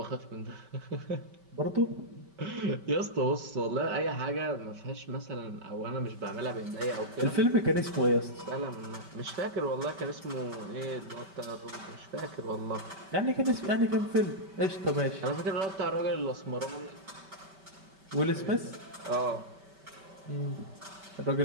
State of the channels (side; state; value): left; late; 5.2 ms